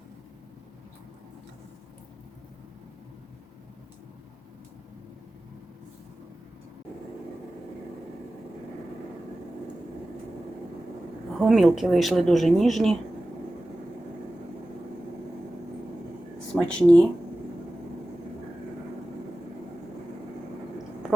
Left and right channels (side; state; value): both; normal; correlation 0.95